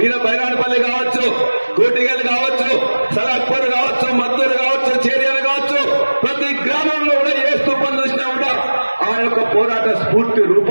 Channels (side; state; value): both; inverted; correlation -1.00